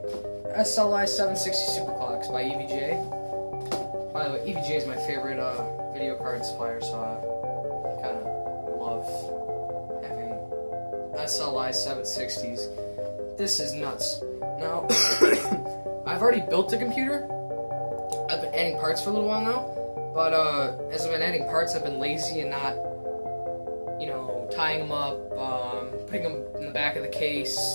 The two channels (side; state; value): both; inverted; correlation -1.00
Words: SLI 760 Superclocks by EVGA. By the way, EVGA is my favorite video card supplier, so I kind of love having SLI 760s. This is nuts. Now, I've already built the computer. I've been adding parts for a little while now, but as I've been adding parts, I've been lazy and not, tying them up, putting them in the back of the case.